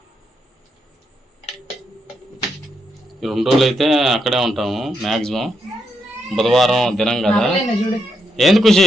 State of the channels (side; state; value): both; normal; correlation 0.81